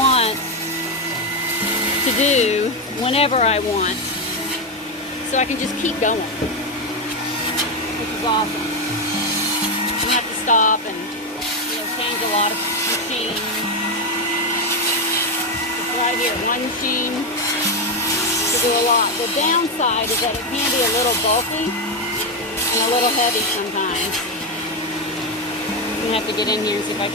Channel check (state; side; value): normal; both; correlation 0.08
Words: to do whenever I want. So I can just keep going, which is awesome. I don't have to stop and change a lot of machines. It's right here, one machine to do a lot. The downside is that it can be a little bulky and a little heavy sometimes. I'm gonna have to get in here and see if I